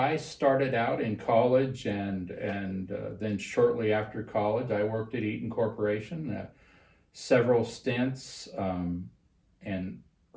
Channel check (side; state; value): both; identical; correlation 1.00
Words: started out in college, and then shortly after college, I worked at Eaton Corporation, several stints, and